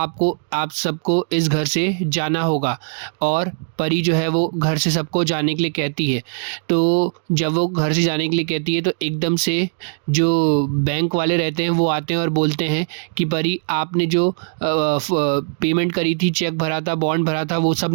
सबको इस घर से जाना होगा और परी जो है वो घर से सबको जाने के लिए कहती है। तो जब वो घर से जाने के लिए कहती है तो एकदम से जो बैंक वाले रहते हैं वो आते हैं और बोलते हैं कि परी आपने जो पेमेंट करी थी, चेक भरा था, बॉन्ड भरा था, वो सब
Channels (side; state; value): left; silent; digital silence